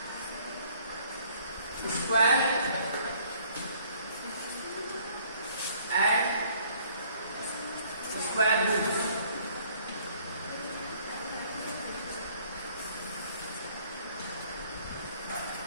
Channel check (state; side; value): inverted; both; correlation -0.60